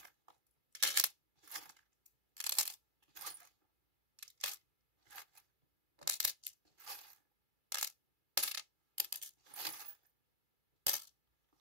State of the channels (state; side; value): late; left; 2.3 ms